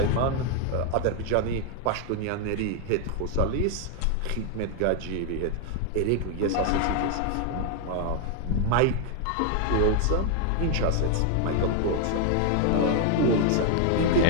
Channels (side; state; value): both; different; correlation 0.01